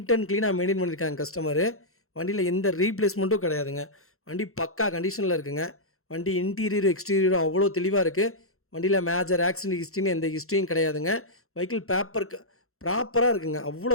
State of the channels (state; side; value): late; right; 0.62 ms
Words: அண்ட் க்ளீனாக மெயின்டைன் பண்ணியிருக்காங்க கஸ்டமரு. வண்டியில் எந்த ரீப்ளேஸ்மெண்ட்டும் கிடையாதுங்க. வண்டி பக்கா கண்டிஷனில் இருக்குங்க. வண்டி இன்டீரியரும் எக்ஸ்டீரியரும் அவ்வளோ தெளிவாக இருக்குது. வண்டியில் மேஜர் ஆக்சிடென்ட் ஹிஸ்ட்ரின்னு எந்த ஹிஸ்ட்ரியும் கிடையாதுங்க. வெஹிக்கிள் பேப்பர் ப்ராப்பராக இருக்குங்க. அவ்வளோ